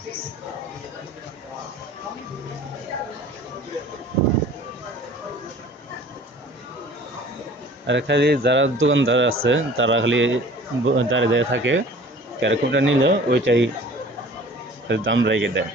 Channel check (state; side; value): normal; both; correlation 0.47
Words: আর খালি যারা দোকানদার আছে তারা খালি দাঁড়িয়ে দাঁড়িয়ে থাকে, ক্যারকমটা নিলে ওইটাই দাম রেখে দেয়।